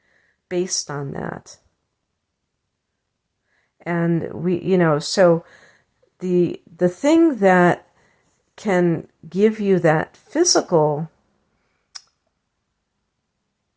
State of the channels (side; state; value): both; identical; correlation 1.00